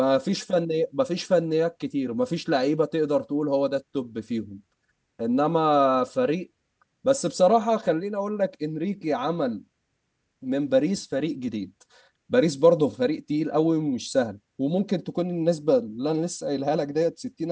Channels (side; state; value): both; identical; correlation 1.00